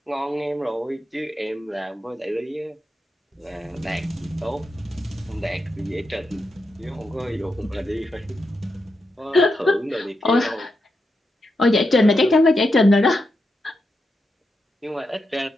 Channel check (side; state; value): both; normal; correlation 0.86